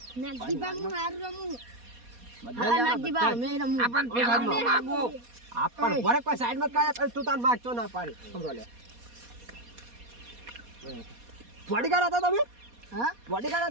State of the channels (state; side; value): late; left; 4.2 ms